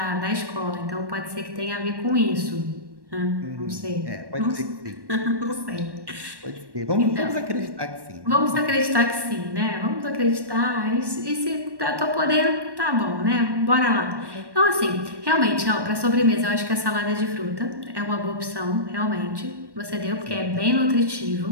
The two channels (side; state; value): left; late; 1.1 ms